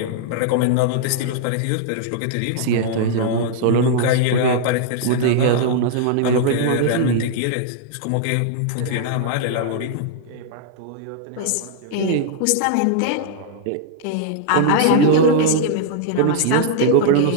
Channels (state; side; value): different; both; correlation -0.01